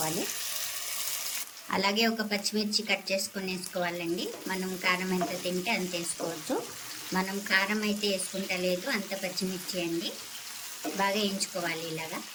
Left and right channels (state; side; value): identical; both; correlation 1.00